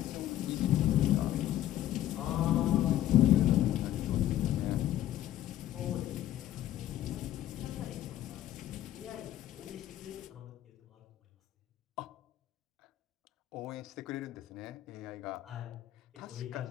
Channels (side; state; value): right; quieter; 12.8 dB